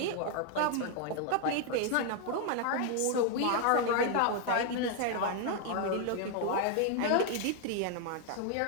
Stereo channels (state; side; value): different; both; correlation 0.00